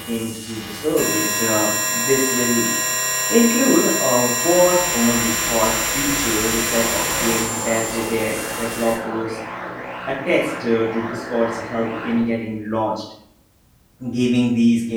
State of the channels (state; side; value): identical; both; correlation 1.00